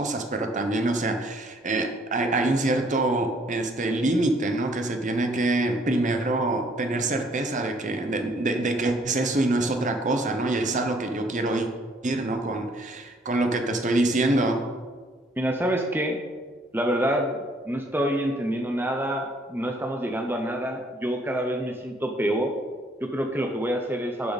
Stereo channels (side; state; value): both; normal; correlation 0.63